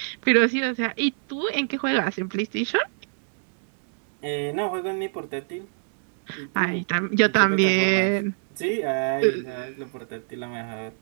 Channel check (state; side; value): silent; left; digital silence